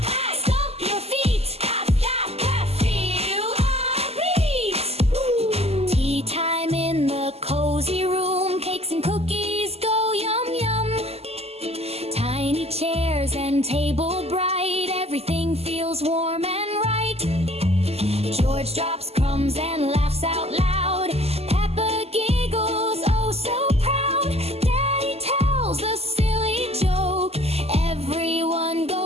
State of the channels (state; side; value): late; left; 0.29 ms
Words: clap, stomp your feet, clap, clap, clap, feel our beat. Tea time in the cozy room, cakes and cookies go yum yum. Tiny chairs and table bright, everything feels warm and right. George drops crumbs and laughs out loud, Peppa giggles oh so proud. Daddy tells a silly joke, everyone